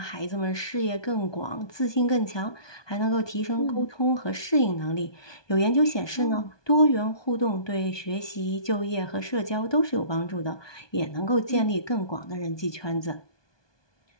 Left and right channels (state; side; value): late; right; 1.2 ms